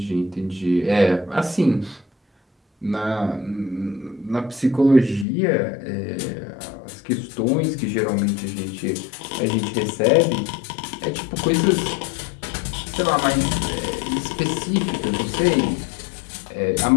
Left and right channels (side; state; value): right; drops out; at 5.2 s